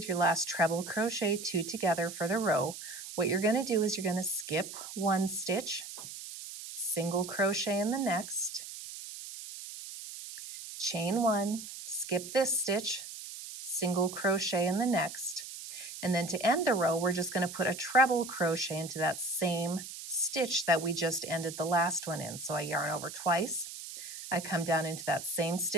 your last treble crochet 2 together for the row, what you're going to do is you're going to skip 1 stitch, single crochet in the next, chain 1, skip this stitch, single crochet in the next, and then to end the row, we're just going to put a treble crochet into that same stitch that we just ended the last one in. So I yarn over twice, I come down into that same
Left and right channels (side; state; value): right; noise; hiss, 11 dB below the sound